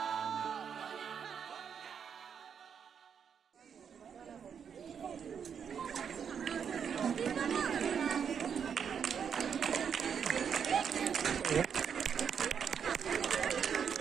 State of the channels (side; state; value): left; quieter; 7.3 dB